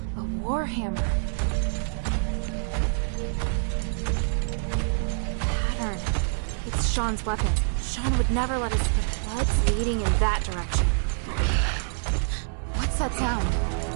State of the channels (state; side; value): silent; left; 61 dB below the other